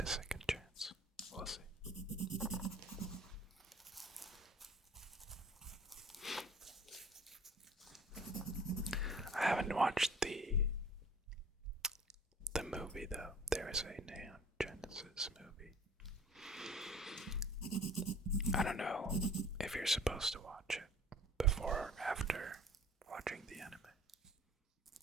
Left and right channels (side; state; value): both; normal; correlation 0.48